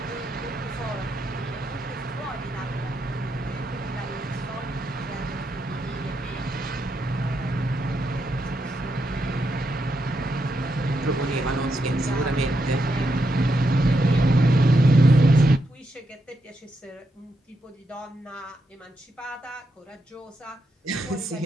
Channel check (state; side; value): normal; both; correlation 0.83